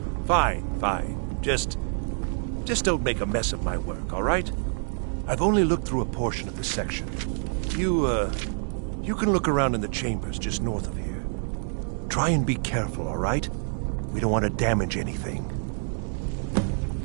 Fine, fine. Just don't make a mess of my work, all right? I've only looked through a portion of the section. You can look around in the chambers just north of here. Try and be careful, all right? We don't want to damage anything.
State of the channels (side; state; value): left; silent; 57 dB below the other